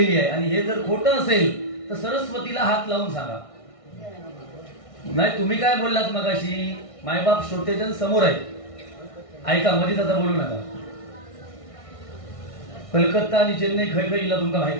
आहे. आणि हे जर खोटं असेल तर सरस्वतीला हात लावून सांगा. नाही, तुम्ही काय बोललात मगाशी, मायबाप श्रोतेजन समोर आहे, ऐका, मध्येच आता बोलू नका. कलकत्ता आणि चेन्नई खय खय इला तुमका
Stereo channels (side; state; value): right; late; 1.6 ms